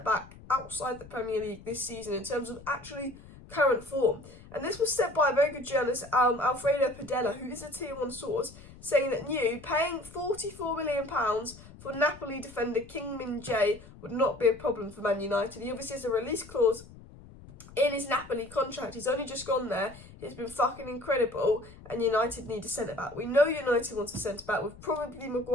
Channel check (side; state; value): left; noise; rumble, 19 dB below the sound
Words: outside the Premier League this season in terms of actually current form. And this was said by a very good journalist, Alfredo Padella, who is a Tier 1 source, saying that paying £44 million for Napoli defender Kim Min Jae would not be a problem for Man United. He obviously has a release clause in his Napoli contract. He's only just gone there. He's been fucking incredible, and United need a centre-back. We know United wants a centre-back, with probably